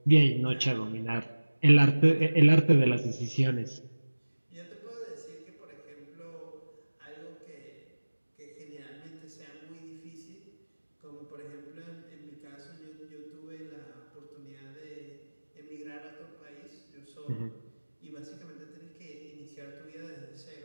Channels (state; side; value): inverted; both; correlation -1.00